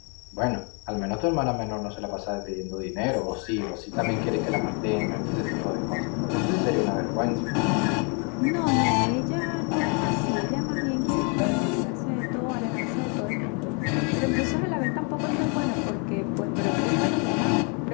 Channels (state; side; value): quieter; right; 35.6 dB